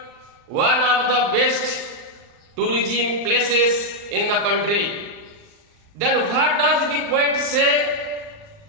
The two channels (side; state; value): left; late; 39 ms